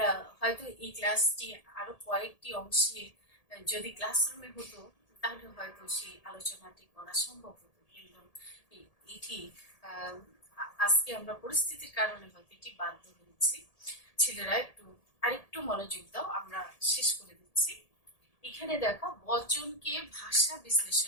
হয়তো এই ক্লাসটি আরো কয়েকটি অংশে যদি ক্লাসরুমে হতো তাহলে হয়তো সেই আলোচনাটি করা সম্ভব হতো, কিন্তু এটি আজকে আমরা পরিস্থিতির কারণে হয়তো এটি বাধ্য হয়েছি। ছেলেরা আরেকটু মনোযোগ দাও, আমরা শেষ করে দিচ্ছি। এখানে দেখো বচনকে ভাষা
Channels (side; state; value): right; late; 1.8 ms